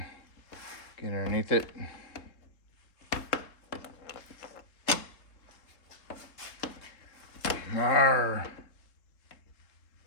Get underneath it. Arr.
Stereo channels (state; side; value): late; right; 3.7 ms